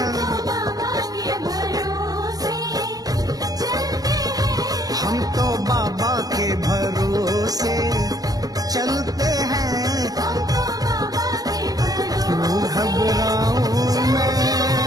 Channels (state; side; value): late; left; 0.18 ms